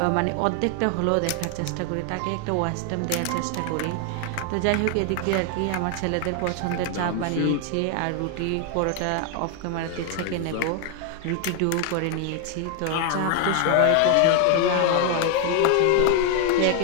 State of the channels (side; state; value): both; different; correlation 0.00